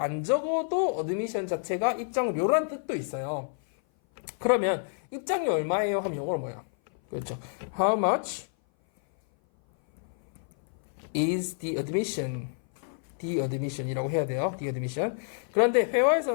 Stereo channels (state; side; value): silent; right; 56 dB below the other